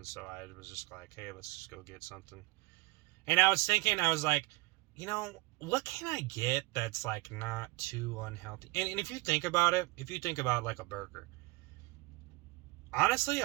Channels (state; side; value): quieter; left; 23.4 dB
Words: so I was just like, hey, let's just go get something. And I was thinking, I was like, what can I get that's like not too unhealthy? And if you think about it, if you think about like a burger, honestly,